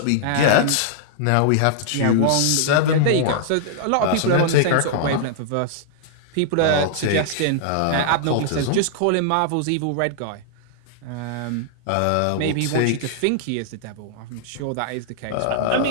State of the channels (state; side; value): different; both; correlation -0.01